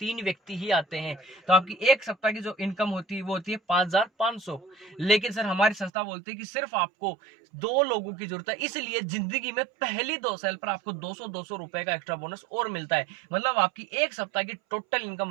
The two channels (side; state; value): left; drops out; at 5.9 s